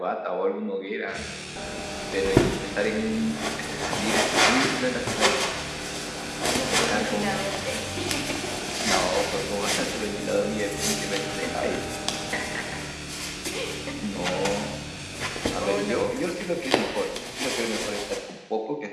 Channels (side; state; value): both; identical; correlation 1.00